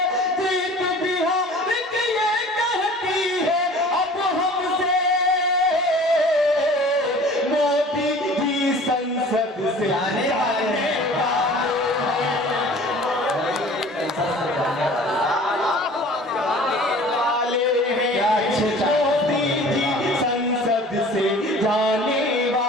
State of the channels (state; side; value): normal; both; correlation 0.45